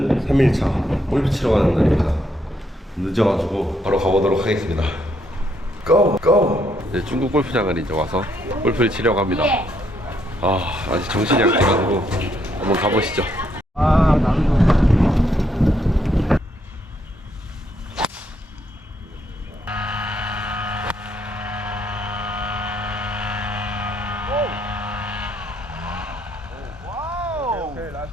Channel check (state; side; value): normal; both; correlation 0.73